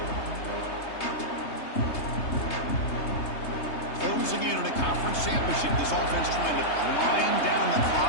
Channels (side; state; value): right; late; 3.3 ms